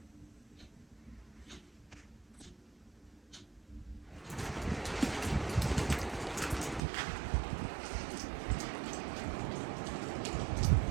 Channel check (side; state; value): left; drops out; at 6.8 s